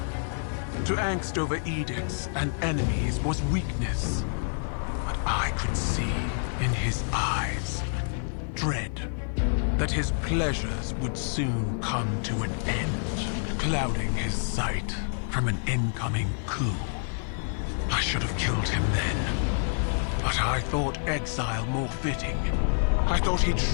To angst over edicts and enemies was weakness. But I could see in his eyes dread that his pleasures would soon come to an end, clouding his sight from an incoming coup. I should have killed him then, but I thought exile more fitting. I thought he'd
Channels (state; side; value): silent; right; digital silence